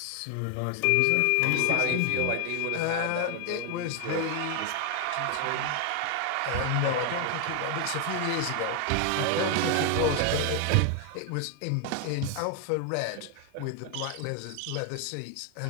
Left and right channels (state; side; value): different; both; correlation 0.01